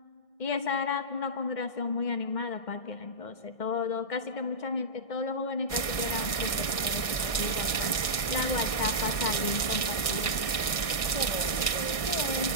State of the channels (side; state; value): right; late; 1.6 ms